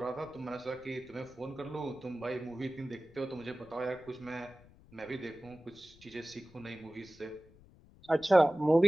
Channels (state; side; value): noise; left; rumble, 24 dB below the sound